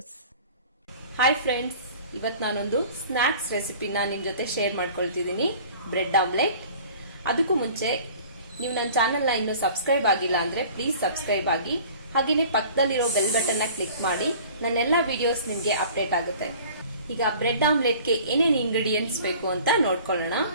Hi friends, ಇವತ್ತು ನಾನೊಂದು ಸ್ನಾಕ್ಸ್ ರೆಸಿಪಿನ ನಿಮ್ಮ ಜೊತೆ ಶೇರ್ ಮಾಡ್ಕೊಳ್ತಿದ್ದೀನಿ. Bread omelette. ಅದಕ್ಕೂ ಮುಂಚೆ ನೀವು ನನ್ನ ಚಾನೆಲ್ನ ಇನ್ನೂ ಸಬ್ಸ್ಕ್ರೈಬ್ ಆಗಿಲ್ಲ ಅಂದ್ರೆ ಪ್ಲೀಸ್ ಸಬ್ಸ್ಕ್ರೈಬ್ ಆಗಿ, ಹಾಗೇನೆ ಪಕ್ಕದಲ್ಲಿರೋ ಬೆಲ್ ಬಟನ್ನ ಕ್ಲಿಕ್ ಮಾಡಿ ನನ್ನೆಲ್ಲ ವಿಡಿಯೋಸ್ ನಿಮಗೆ ಅಪ್ಡೇಟ್ ಆಗುತ್ತೆ. ಈಗ ಬ್ರೆಡ್ ಆಮ್ಲೆಟ್ಗೆ ಏನೇನು ಇಂಗ್ರೀಡಿಯೆಂಟ್ಸ್ ಬೇಕು ಅಂತ ನೋಡ್ಕೊಳ್ಳೋಣ.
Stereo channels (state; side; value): inverted; both; correlation -0.46